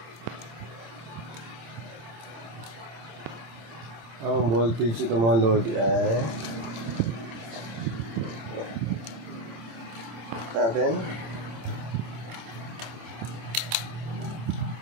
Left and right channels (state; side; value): late; left; 26 ms